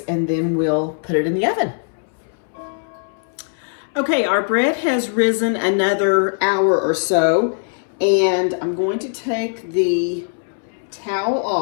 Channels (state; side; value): silent; right; 66 dB below the other